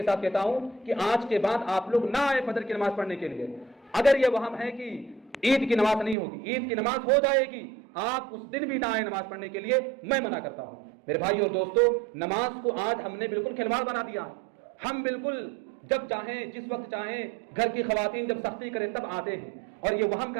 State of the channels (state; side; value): drops out; left; at 6.2 s